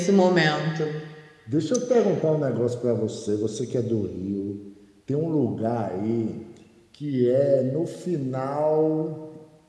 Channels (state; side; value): identical; both; correlation 1.00